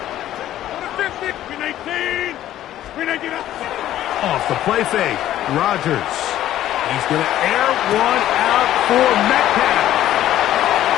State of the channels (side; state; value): right; quieter; 12.9 dB